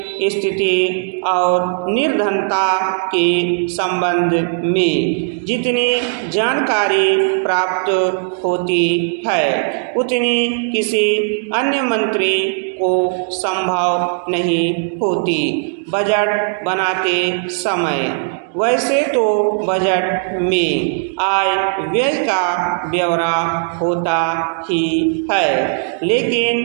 स्थिति और निर्धनता के संबंध में जितनी जानकारी प्राप्त होती है उतनी किसी अन्य मंत्री को संभव नहीं होती बजट बनाते समय। वैसे तो बजट में आय व्यय का ब्यौरा होता ही है,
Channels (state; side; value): silent; left; digital silence